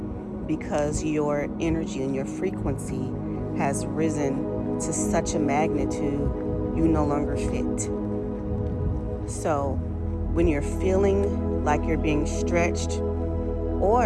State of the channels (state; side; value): identical; both; correlation 1.00